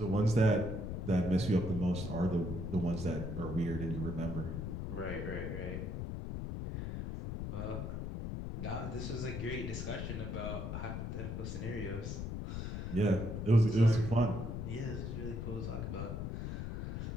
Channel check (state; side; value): noise; left; rumble, 4 dB below the sound